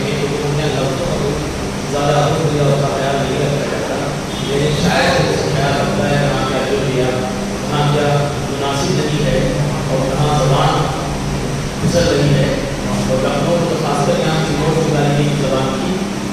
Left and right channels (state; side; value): identical; both; correlation 1.00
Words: گے کہ ان کے لفظوں کا زیادہ حکم کا خیال نہیں رکھا جاتا، لیکن شاید اس کا خیال رکھتا ہے کہاں کیا جو دیا، کہاں کیا مناسب نہیں ہے اور کہاں زبان پھسل رہی ہے. اور لکھنؤ تو خاص کر یہاں کی نوٹ نکالنے کی زبان کی